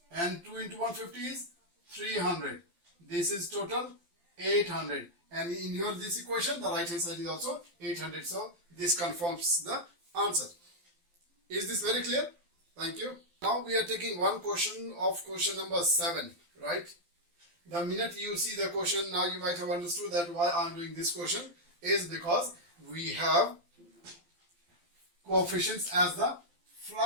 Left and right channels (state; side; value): late; left; 12 ms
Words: And 2 into 150 is 300. This is total 800. And in your this equation, the right hand side is also 800. So this confirms the answer. Is this very clear? Thank you. Now we are taking one question of question number 7, right? The minute you see the question, now you might have understood that why I am doing this question is because we have coefficients as the